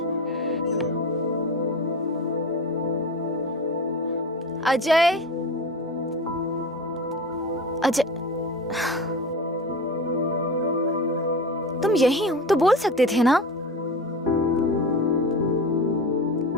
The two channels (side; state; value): both; normal; correlation 0.29